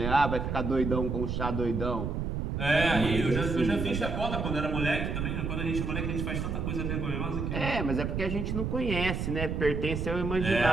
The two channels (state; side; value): noise; right; rumble, 2 dB below the sound